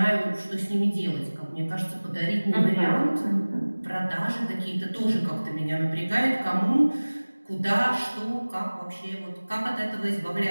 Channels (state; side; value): inverted; both; correlation -1.00